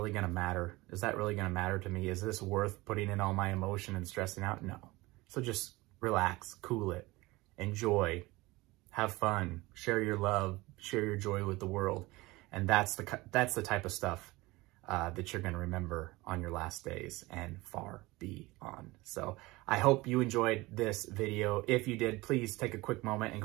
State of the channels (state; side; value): quieter; left; 21.2 dB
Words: going to matter? Is that really going to matter to me? Is this worth putting in all my emotion and stressing out? No. So just relax, cool it, enjoy, have fun, share your love, share your joy with the world. And that's the type of stuff that you're going to remember on your last days and far beyond. So I hope you enjoyed this video. If you did, please take a quick moment and